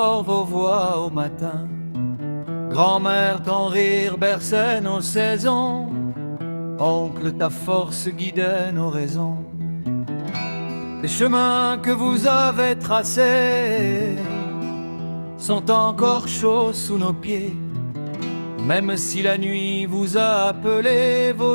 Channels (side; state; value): both; inverted; correlation -1.00